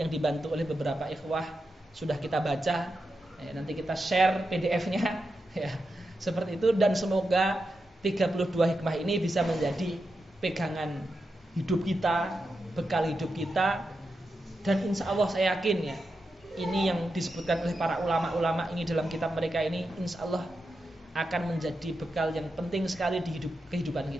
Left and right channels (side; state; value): both; normal; correlation 0.88